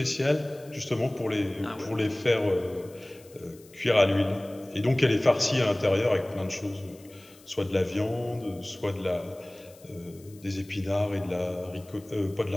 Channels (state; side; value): noise; left; hiss, 25 dB below the sound